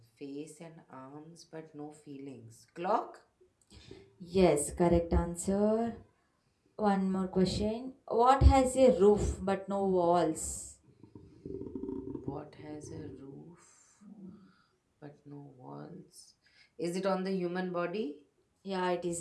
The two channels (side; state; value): both; identical; correlation 1.00